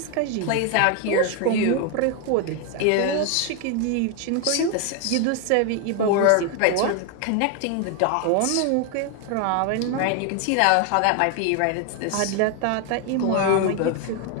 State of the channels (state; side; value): different; both; correlation 0.01